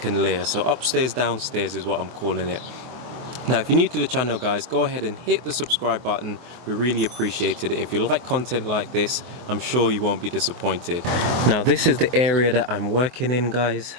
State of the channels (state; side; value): late; left; 24 ms